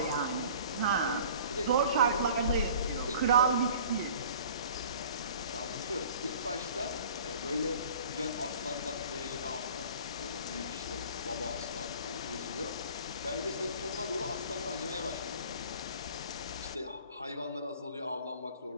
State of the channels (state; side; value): inverted; both; correlation -0.46